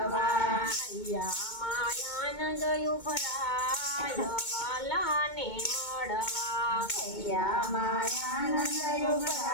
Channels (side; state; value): right; late; 2.2 ms